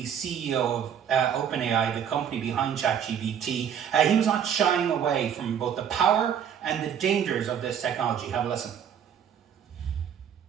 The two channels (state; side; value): quieter; left; 8.5 dB